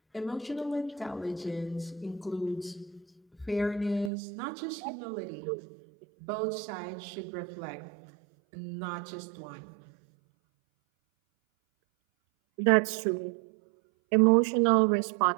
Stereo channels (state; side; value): drops out; left; at 4.1 s